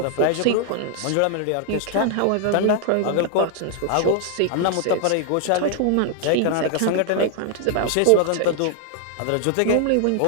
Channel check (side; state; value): both; different; correlation 0.00